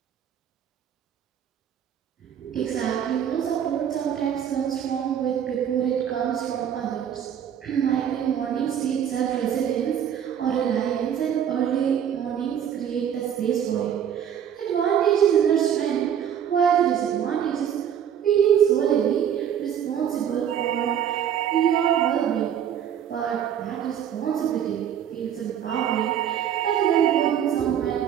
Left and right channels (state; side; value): quieter; left; 9.1 dB